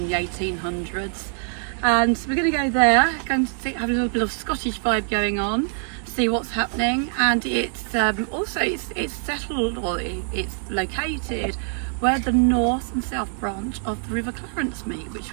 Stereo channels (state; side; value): silent; left; 56 dB below the other